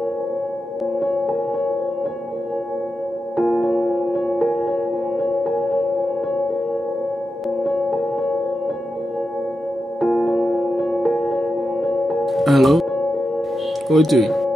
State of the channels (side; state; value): both; normal; correlation 0.89